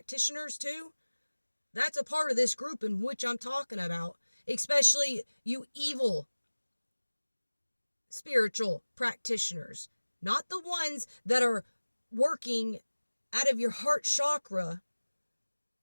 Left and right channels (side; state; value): both; inverted; correlation -1.00